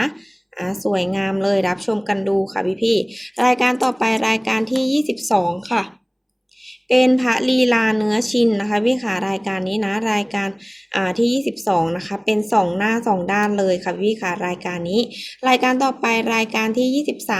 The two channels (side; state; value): both; identical; correlation 1.00